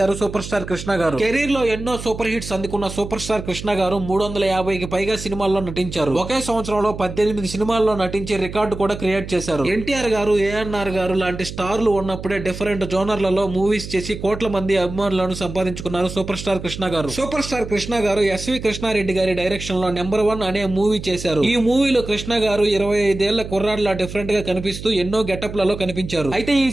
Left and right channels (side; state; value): right; noise; hum, 10 dB below the sound